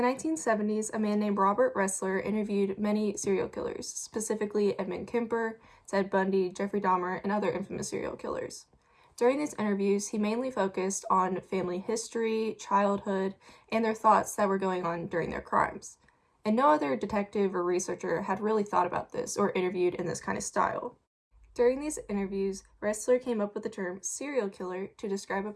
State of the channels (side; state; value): both; identical; correlation 1.00